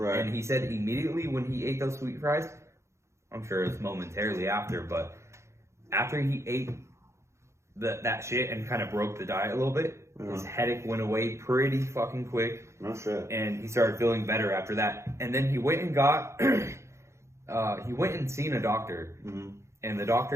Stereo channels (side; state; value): left; late; 0.14 ms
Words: And he said immediately when he ate those sweet fries, I'm sure it's momentarily after, but after he ate that shit and kind of broke the diet a little bit, his headache went away pretty fucking quick. No shit. And he started feeling better after that. And then he went and got, he went and seen a doctor. And the